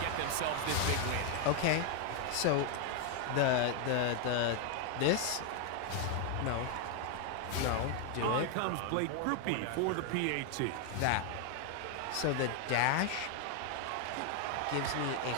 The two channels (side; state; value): both; different; correlation 0.00